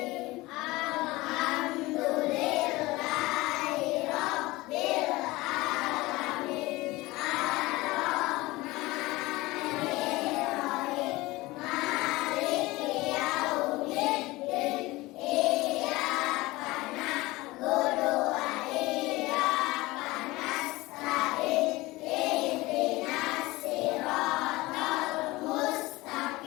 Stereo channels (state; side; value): quieter; right; 20.5 dB